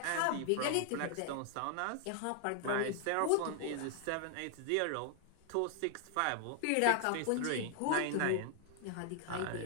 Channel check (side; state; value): both; different; correlation 0.00